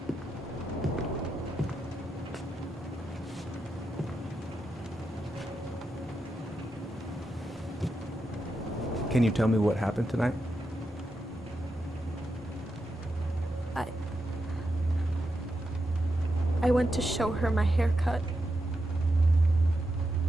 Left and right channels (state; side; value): normal; both; correlation 0.86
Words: Can you tell me what happened tonight? I went to show her my haircut.